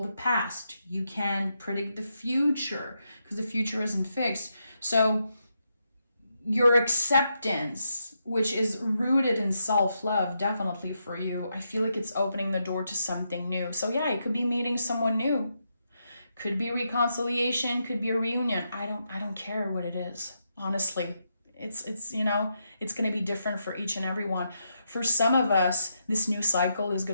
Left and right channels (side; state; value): both; inverted; correlation -0.82